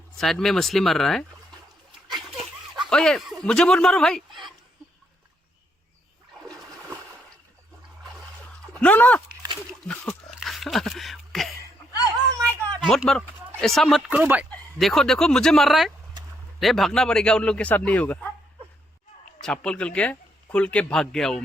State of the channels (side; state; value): both; normal; correlation 0.75